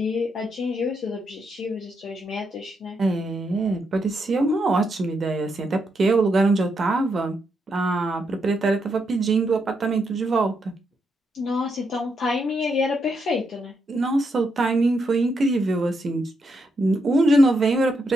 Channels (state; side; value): normal; both; correlation 0.81